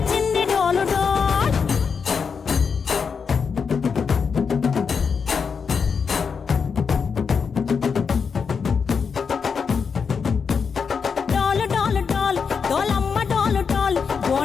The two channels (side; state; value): right; quieter; 5.9 dB